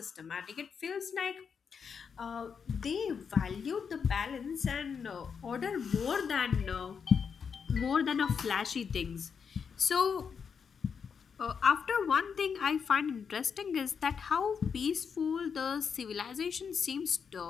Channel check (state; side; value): quieter; right; 6.4 dB